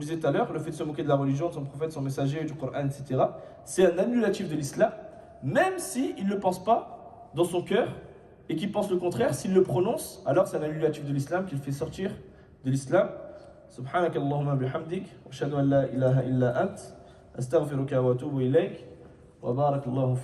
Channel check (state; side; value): identical; both; correlation 1.00